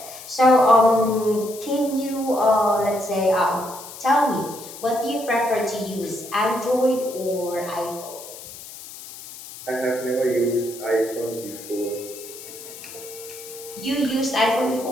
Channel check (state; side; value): noise; left; hiss, 14 dB below the sound